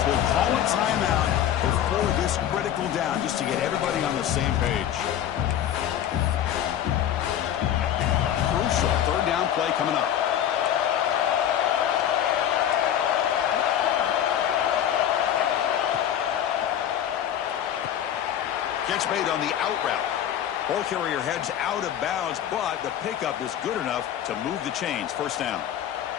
will call a timeout before this critical down just to get everybody on the same page. Crucial 3rd down play coming up. Catch made on the out route. Ball carrier heads out of bounds, but the pickup is good enough to move the chains. 1st down.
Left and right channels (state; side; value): quieter; right; 10.5 dB